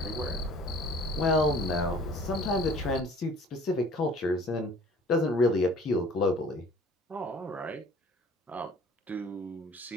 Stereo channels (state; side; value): normal; both; correlation 0.50